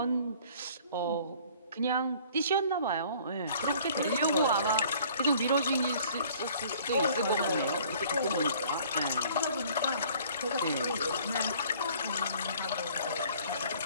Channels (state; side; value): inverted; both; correlation -0.54